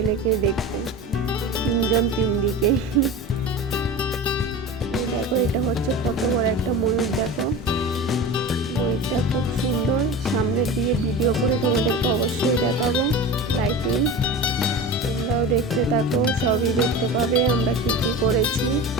দেখতে, তিনজন তিন দিকে। দেখো এটা হচ্ছে কত বড় একটা ময়ূর। দেখো ময়ূরটা খুব সুন্দর, সামনে দিয়ে ভিডিও করে তোমাদেরকে অবশ্যই দেখাবো। লাইটিং তোমরাও দেখতে থাকো, সবই দেখতে পাবে আমরা কি কি করেছি।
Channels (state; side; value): normal; both; correlation 0.31